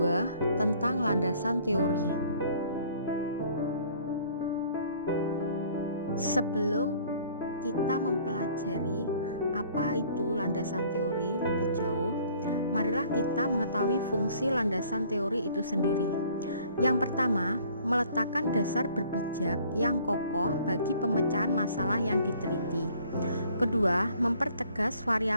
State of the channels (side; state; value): both; inverted; correlation -0.56